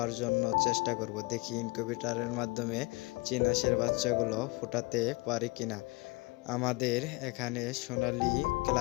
জন্য চেষ্টা করব। দেখি ইনকিউবেটরের মাধ্যমে চীনা হাঁসের বাচ্চাগুলো ফোটাতে পারি কিনা। আমাদের এখানে সোনালী,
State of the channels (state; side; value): quieter; right; 25.0 dB